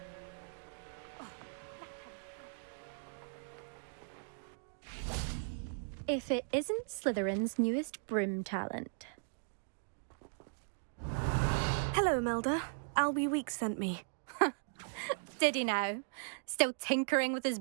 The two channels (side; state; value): left; silent; digital silence